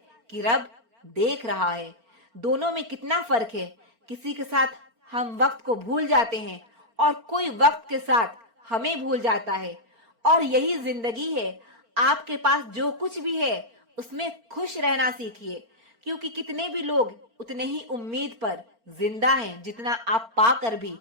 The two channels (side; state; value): left; late; 4.4 ms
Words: कि रब देख रहा है। दोनों में कितना फर्क है। किसी के साथ हम वक्त को भूल जाते हैं और कोई वक्त के साथ हमें भूल जाता है। और यही जिंदगी है। आपके पास जो कुछ भी है उसमें खुश रहना सीखिए, क्योंकि कितने भी लोग उतने ही उम्मीद पर जिंदा हैं जितना आप पाकर भी